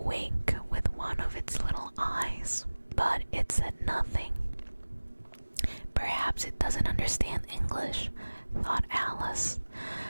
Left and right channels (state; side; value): inverted; both; correlation -1.00